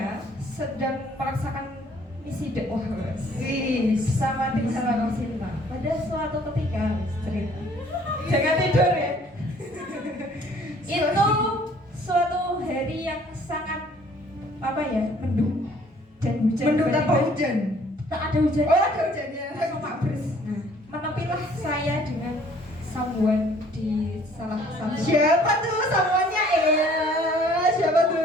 sedang merasakan misi dakwah Wih. sama tim Salam Cinta. Pada suatu ketika cerita. Jangan tidur ya. Itu suatu hari yang sangat apa ya, mendung dan hujan. Mendung tanpa tiba-tiba. hujan. Tak ada hujan. Oh ada hujannya. Langsung mabres. Nah, menepilah saya dengan someone di salah satu. Siapa tuh samuannya? Siapa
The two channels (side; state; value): both; normal; correlation 0.58